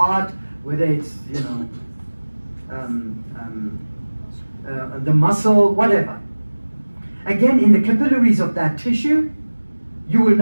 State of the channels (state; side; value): inverted; both; correlation -1.00